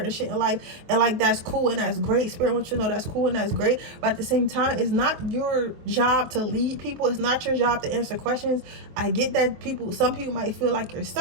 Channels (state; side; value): late; left; 23 ms